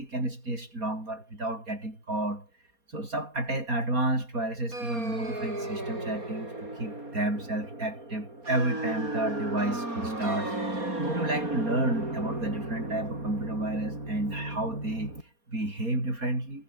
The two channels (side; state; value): left; late; 4.2 ms